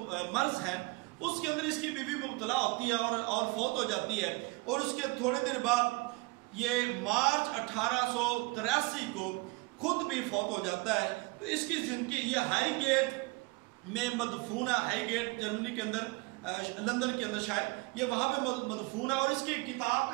مرض ہے اس کے اندر اس کی بیوی مبتلا ہوتی ہے اور فوت ہو جاتی ہے. اور اس کے تھوڑے دن بعد یہ مارچ 1883 کو خود بھی فوت ہو جاتا ہے. تو اس کی زندگی یہ ہائی گیٹ میں مدفون ہے. ہائی گیٹ جرمنی کے اندر, لندن کے اندر شاید, یہ وہاں پہ مدفون ہے. اور اس کی کتاب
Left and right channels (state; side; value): quieter; left; 25.3 dB